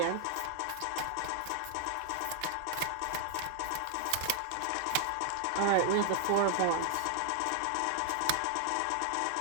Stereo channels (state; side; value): different; both; correlation 0.00